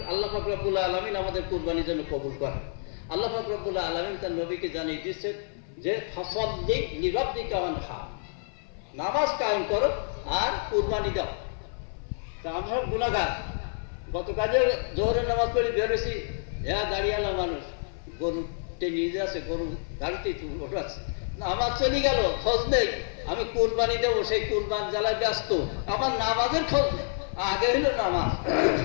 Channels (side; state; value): right; silent; 56 dB below the other